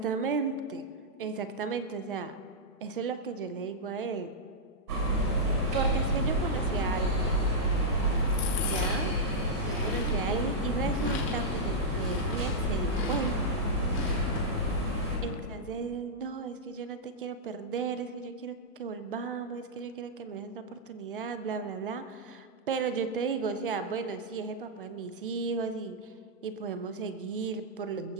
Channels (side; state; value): both; normal; correlation -0.08